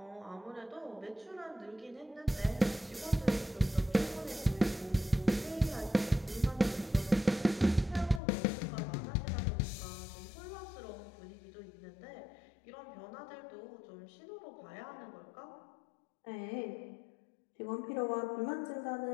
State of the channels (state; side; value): drops out; right; at 8.2 s